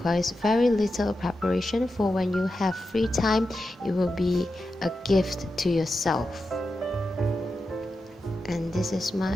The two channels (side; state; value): both; normal; correlation 0.90